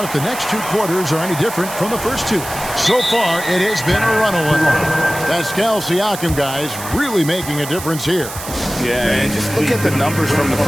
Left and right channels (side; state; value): right; noise; hiss, 10 dB below the sound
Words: if the next two quarters are any different from the first two. So far, it has been a runaway. Pascal Siakam, guys, really making a difference here. Yeah, and just look at the numbers from the